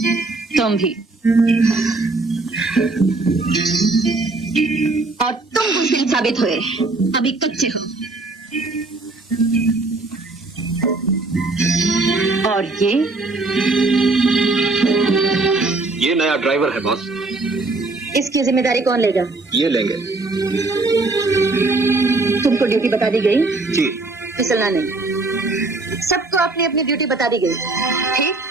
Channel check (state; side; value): quieter; left; 3.3 dB